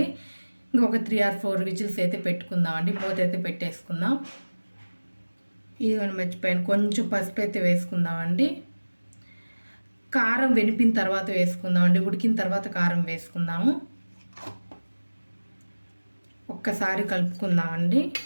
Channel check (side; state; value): both; inverted; correlation -1.00